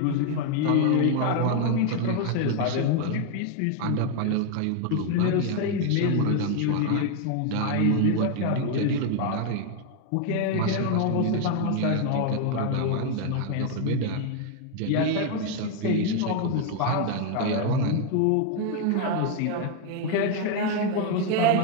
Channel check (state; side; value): different; both; correlation 0.00